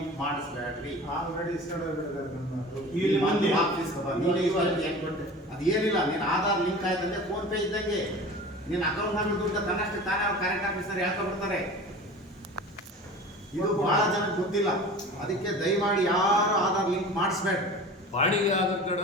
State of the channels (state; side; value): normal; both; correlation 0.38